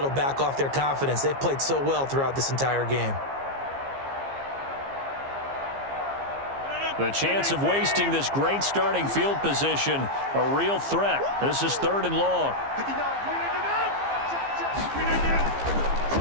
back off their confidence. They've played so well throughout this entire game. The chance of wasting this great starting field position, a real threat. This is 3rd and long.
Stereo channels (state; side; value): late; left; 15 ms